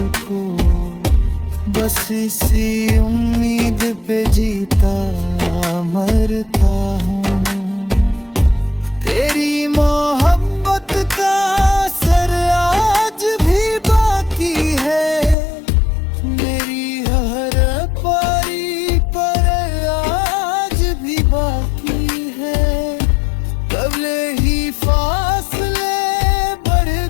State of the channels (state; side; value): drops out; right; at 15.4 s